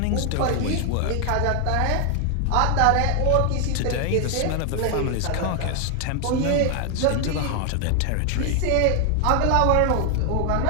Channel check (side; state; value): both; different; correlation 0.00